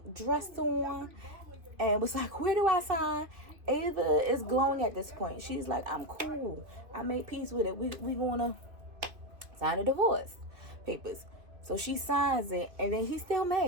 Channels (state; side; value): late; left; 2.3 ms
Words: dress on and was like, where do I sign? Ava is glowing at this point. She's like, I'm cool. I made peace with it. We gonna sign the divorce papers. So she signs it, and then he's still